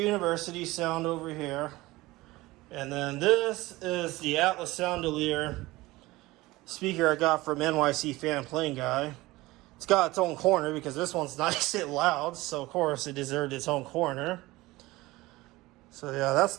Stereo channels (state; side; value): quieter; left; 19.7 dB